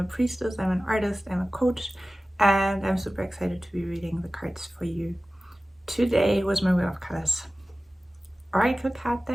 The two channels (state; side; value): normal; both; correlation 0.96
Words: priestess, I'm an artist, I'm a coach, and I'm super excited to be reading the cards for you. Today was my Wheel of Colors Oracle card